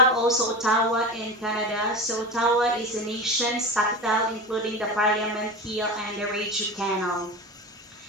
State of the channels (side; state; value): both; normal; correlation 0.27